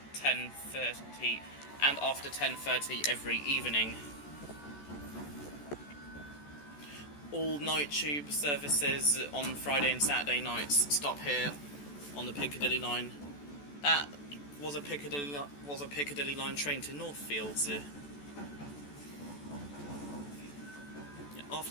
10:30 every evening. All night tube services on Friday and Saturday nights stop here on the Piccadilly line. That was a Piccadilly line train to Northfields.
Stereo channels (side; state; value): right; late; 14 ms